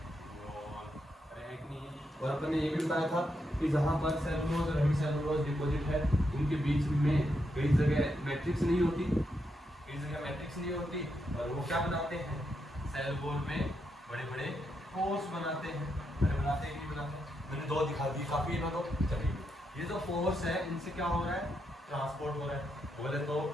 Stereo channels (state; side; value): normal; both; correlation 0.82